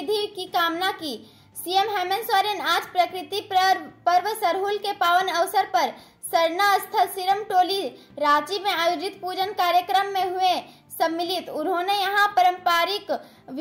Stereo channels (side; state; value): both; identical; correlation 1.00